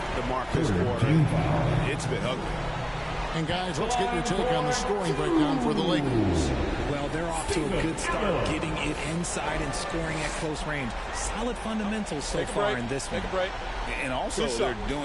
the mark this quarter. It's been ugly. And guys, let's get your take on the scoring breakdown for the Lakers. Well, they're off to a good start, getting it inside and scoring at close range. Solid fundamentals so far in this one. And also, they're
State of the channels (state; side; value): identical; both; correlation 1.00